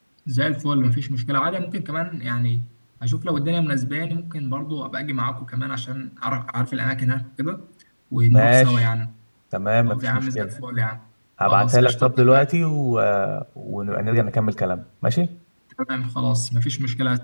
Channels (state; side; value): inverted; both; correlation -1.00